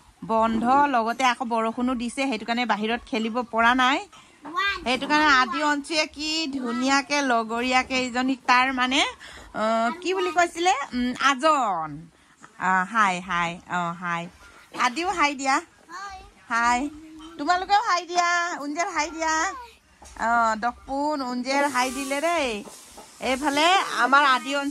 বন্ধ লগতে আকৌ বৰষুণো দিছে সেইটো কাৰণে বাহিৰত খেলিব পৰা নাই সেইটো কাৰণে আদি অঞ্চুয়ে কি ধুনীয়াকে লগৰীয়াকে ইজনীক তাৰ মানে কি বুলি কৈছিলে আজন হাই হাই হাই আদিও হাই দিয়া হাই তোমালোকেও হাই দিয়া উঞ্জেৰ হাই দিয়া দকপুন উঞ্জেৰ হাই দিলে দেই এইফালে আমাৰ আদি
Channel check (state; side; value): identical; both; correlation 1.00